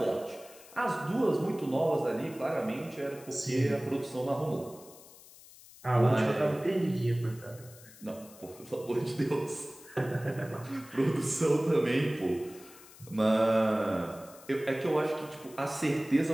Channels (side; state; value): left; noise; hiss, 21 dB below the sound